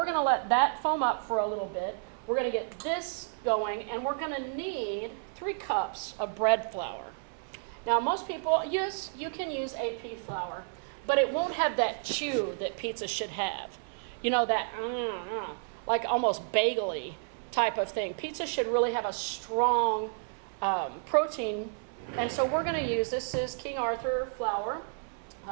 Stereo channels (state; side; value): silent; left; 57 dB below the other